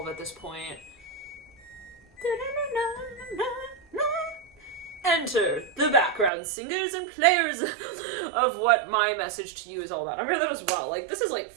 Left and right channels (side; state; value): left; drops out; at 6.3 s